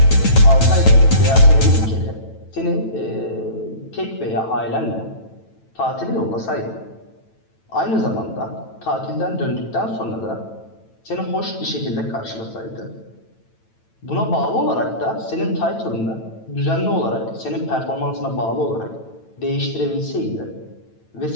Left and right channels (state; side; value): late; right; 9.0 ms